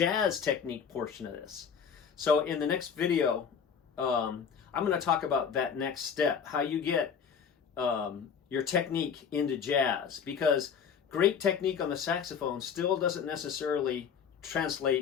technique portion of this. So in the next video, I'm going to talk about that next step, how you get your technique into jazz, because great technique on the saxophone still doesn't necessarily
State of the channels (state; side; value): quieter; right; 7.0 dB